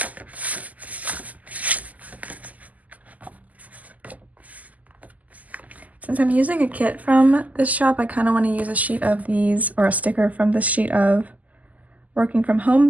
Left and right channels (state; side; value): late; left; 0.077 ms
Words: Since I'm using a kit from this shop, I kind of want to use a sheet of these, or a sticker from this sheet of Working From Home